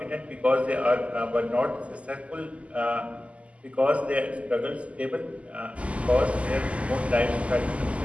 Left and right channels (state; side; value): late; left; 0.062 ms